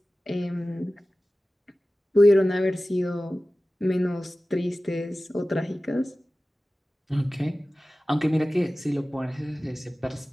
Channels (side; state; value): both; normal; correlation 0.96